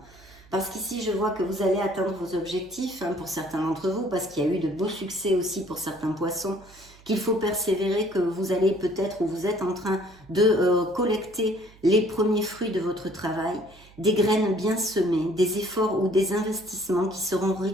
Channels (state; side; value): noise; right; hum, 25 dB below the sound